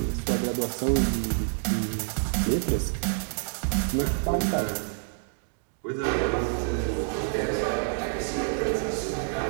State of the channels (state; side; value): silent; left; digital silence